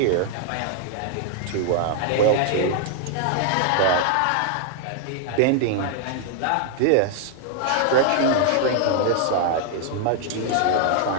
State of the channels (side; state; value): both; different; correlation 0.00